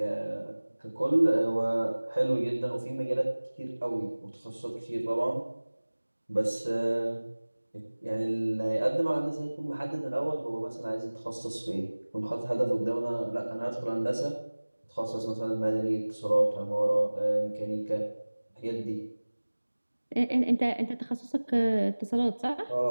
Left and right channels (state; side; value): inverted; both; correlation -1.00